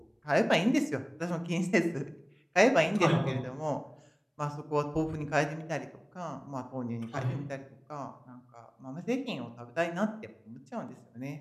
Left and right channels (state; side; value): identical; both; correlation 1.00